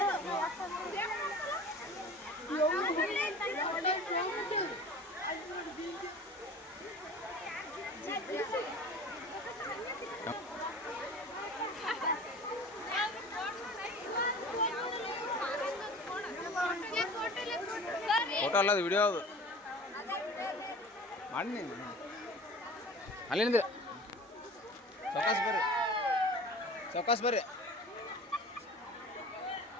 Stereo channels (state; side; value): normal; both; correlation 0.40